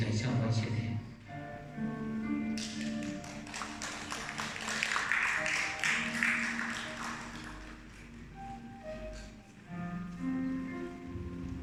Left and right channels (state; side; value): identical; both; correlation 1.00